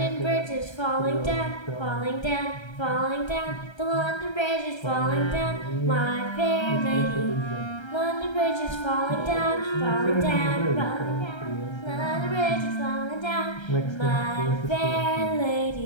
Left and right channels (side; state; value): right; late; 1.3 ms